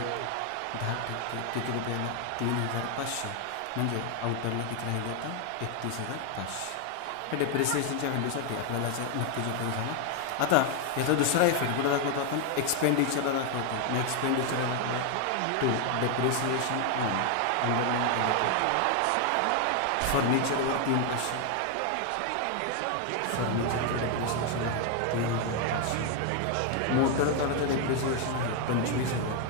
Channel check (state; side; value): different; both; correlation 0.01